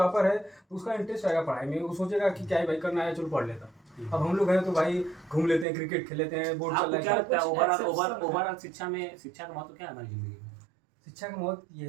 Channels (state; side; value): drops out; left; at 5.7 s